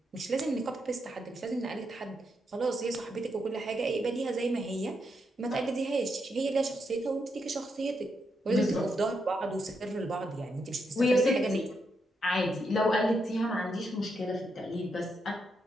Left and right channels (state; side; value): normal; both; correlation 0.81